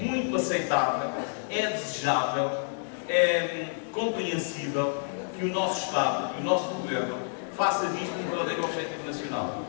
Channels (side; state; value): right; silent; digital silence